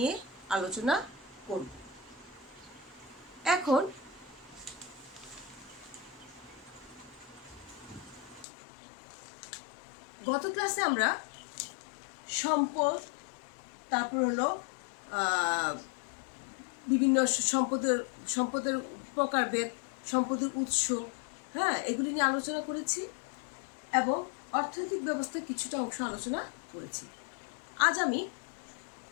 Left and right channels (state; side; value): drops out; right; at 8.5 s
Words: আলোচনা করব। এখন গত ক্লাসে আমরা সম্পদ, তারপর হলো বিভিন্ন সম্পদের প্রকারভেদ, সম্পদের উৎস, এগুলি নিয়ে আলোচনা করেছি এবং অর্থনৈতিক ব্যবস্থার কিছুটা অংশ আলোচনা করেছি। আজ আমি